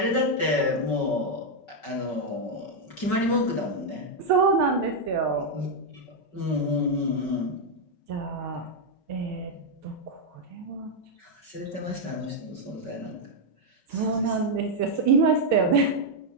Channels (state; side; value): late; right; 5.3 ms